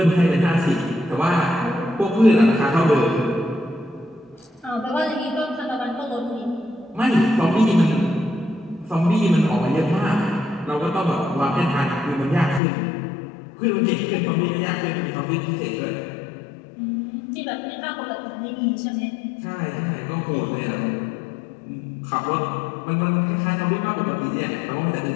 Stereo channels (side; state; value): right; drops out; at 12.6 s